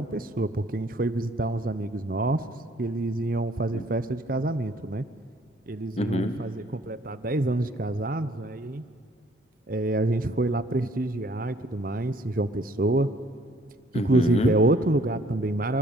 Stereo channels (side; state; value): both; normal; correlation 0.60